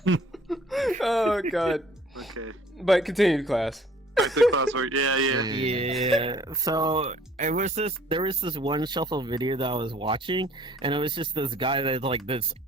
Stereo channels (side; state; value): both; normal; correlation 0.55